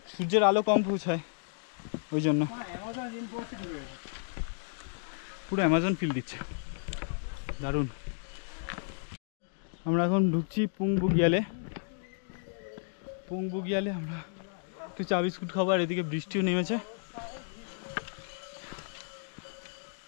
সূর্যের আলো কম পৌঁছায় ওই জন্য পুরো অ্যামাজন ফিল দিচ্ছে, দারুণ। আমরা এখন ঢুকছি পুং বুগিয়ালে। পুং বুগিয়ালে আমরা একটু চা বিস্কুট খাবো, আর এদিকে বৃষ্টিও নেমেছে।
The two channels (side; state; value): right; silent; digital silence